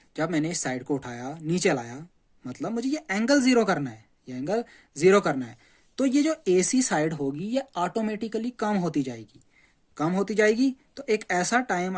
जब मैंने इस साइड को उठाया नीचे लाया, मतलब मुझे ये एंगल जीरो करना है, तो ये जो AC साइड होगी ये ऑटोमेटिकली कम होती जाएगी। तो एक ऐसा टाइम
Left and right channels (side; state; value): both; identical; correlation 1.00